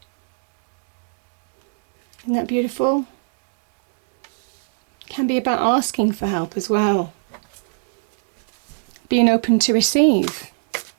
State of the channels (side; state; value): left; silent; digital silence